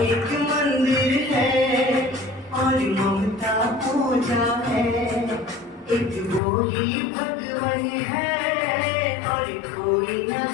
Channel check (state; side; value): drops out; right; at 6.4 s